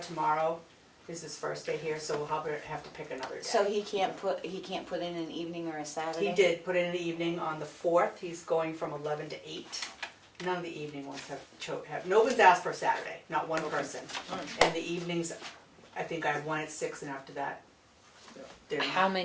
tomorrow, this is his first day here, so we'll have to pick another day. So he can't put in an evening or a Saturday? He did put in the evening on the 4th, he's going from 11 to 8. None of the evening ones have, no one's asked for a Saturday, not one person. And the evenings, I think I have one at 6, and after that, they're How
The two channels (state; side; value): identical; both; correlation 1.00